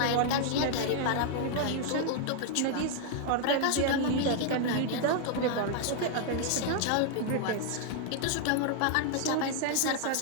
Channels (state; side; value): different; both; correlation 0.00